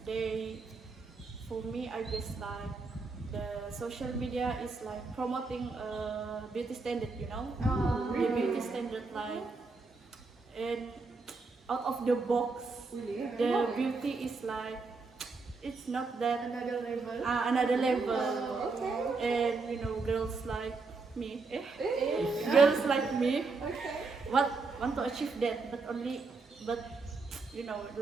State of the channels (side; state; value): left; quieter; 4.1 dB